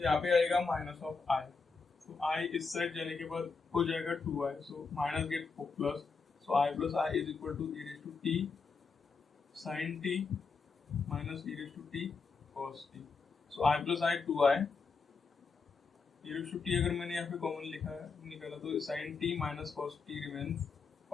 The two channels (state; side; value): quieter; right; 4.7 dB